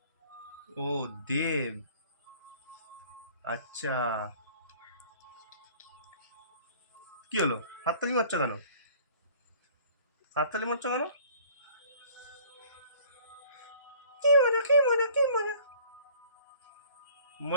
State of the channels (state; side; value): inverted; both; correlation -0.52